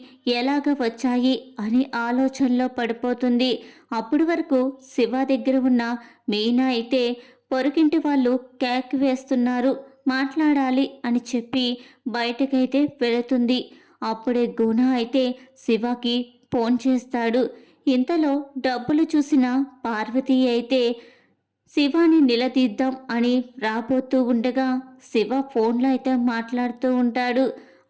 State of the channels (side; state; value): both; identical; correlation 1.00